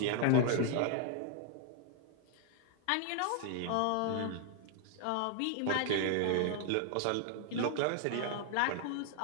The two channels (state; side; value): different; both; correlation 0.00